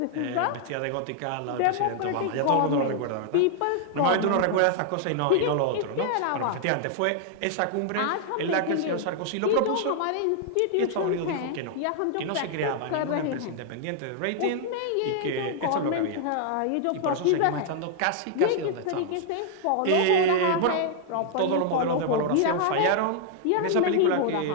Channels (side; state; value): both; different; correlation -0.01